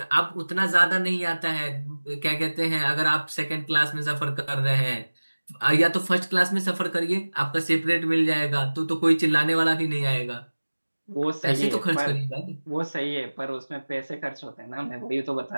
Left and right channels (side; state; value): both; inverted; correlation -1.00